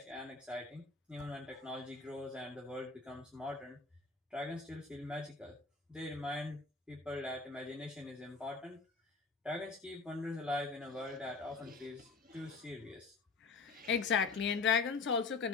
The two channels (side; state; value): right; quieter; 4.4 dB